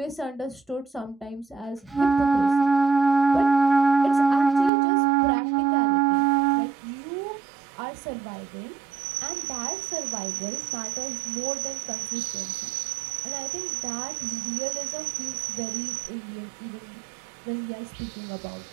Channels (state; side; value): drops out; left; at 4.7 s